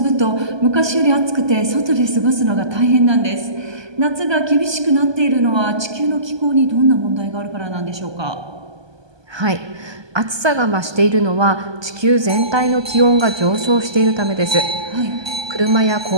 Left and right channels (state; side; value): late; left; 1.2 ms